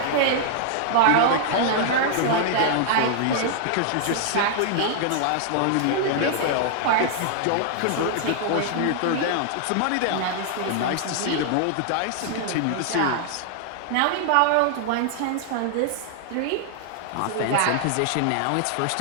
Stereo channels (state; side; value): different; both; correlation -0.01